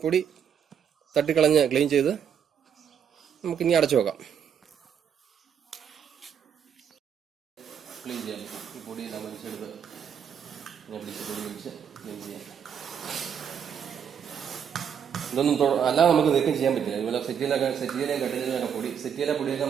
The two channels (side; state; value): left; quieter; 7.9 dB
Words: പൊടി തട്ടിക്കളഞ്ഞ് ക്ലീൻ ചെയ്ത് നമുക്കിനി അടച്ചു വെക്കാം. ക്ലീൻ ചെയ്യാം. ഈ പൊടിയെല്ലാം വലിച്ചെടുത്ത് പൊടി വലിച്ച് ക്ലീൻ ചെയ്യാം. ഇതൊന്നും അല്ലാതെ നമുക്ക് നീക്കം ചെയ്യാൻ പറ്റില്ല. ഇതുപോലെ സെറ്റിയിലെയും കട്ടിലൊക്കെ പൊടിയൊക്കെ